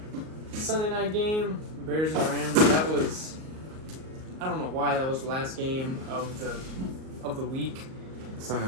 Sunday night game, Bears and Rams. That was, I don't know why that was the last game of the week. Sunday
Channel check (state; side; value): late; left; 38 ms